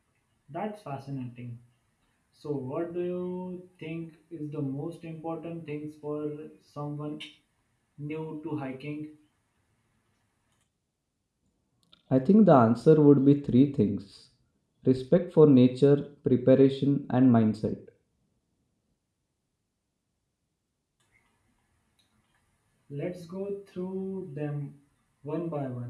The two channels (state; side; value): identical; both; correlation 1.00